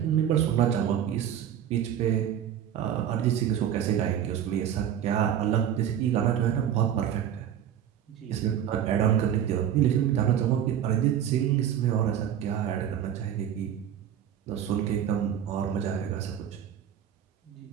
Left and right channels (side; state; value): left; quieter; 9.8 dB